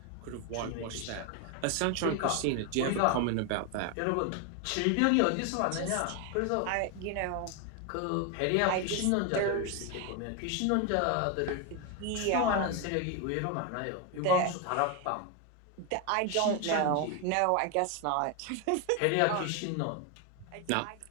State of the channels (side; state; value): both; different; correlation 0.01